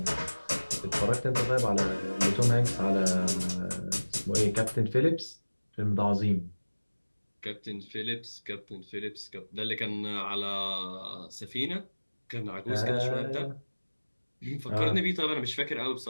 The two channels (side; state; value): both; inverted; correlation -1.00